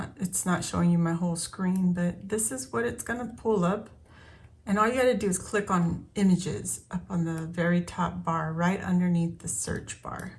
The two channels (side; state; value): both; identical; correlation 1.00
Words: It's not showing you my whole screen, but this is what it's gonna pull up. And all you gotta do is click on images up on the very top bar, right underneath the search bar.